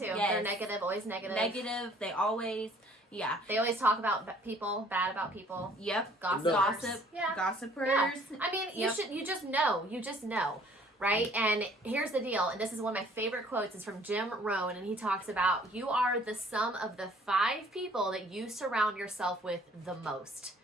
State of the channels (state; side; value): normal; both; correlation 0.57